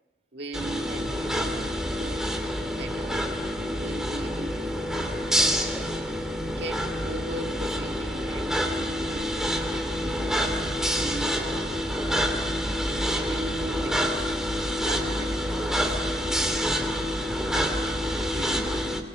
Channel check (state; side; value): normal; both; correlation 0.75